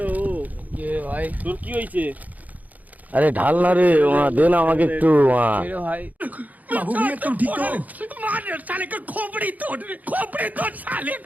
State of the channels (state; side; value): late; left; 0.078 ms